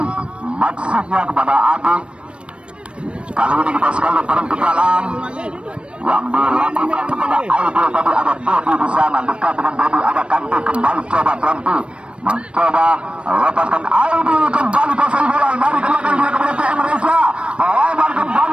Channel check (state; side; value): late; left; 0.059 ms